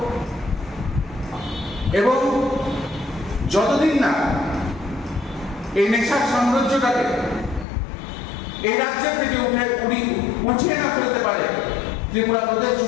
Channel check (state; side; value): drops out; right; at 7.7 s